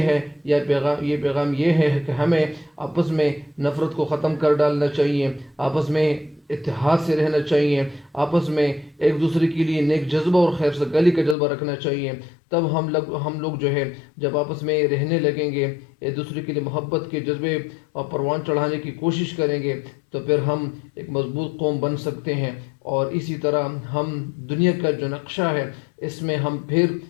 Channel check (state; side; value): drops out; right; at 11.4 s